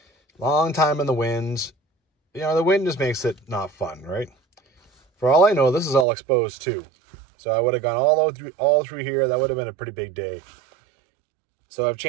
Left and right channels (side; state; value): left; drops out; at 6.1 s